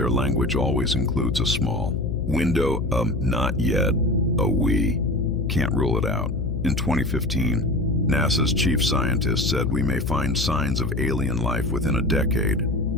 language always includes a small window of not yet, a we can't rule it out. In 2015, NASA's chief scientist said we may find signs of alien life within a decade.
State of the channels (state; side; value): noise; left; hum, 3 dB below the sound